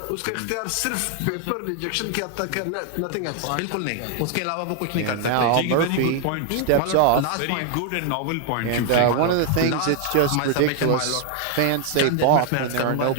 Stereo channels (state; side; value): different; both; correlation 0.00